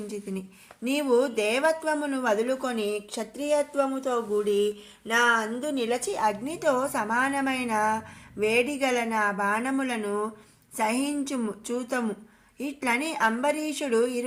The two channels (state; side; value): identical; both; correlation 1.00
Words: నీవు దేవత్వమును వదులుకొని క్షత్రియత్వముతో కూడి నా అందు నిలచి అగ్నితో సమానమైన వేడిగల నా బాణములను సహించుము చూతము. ఇట్లని అంబరీషుడు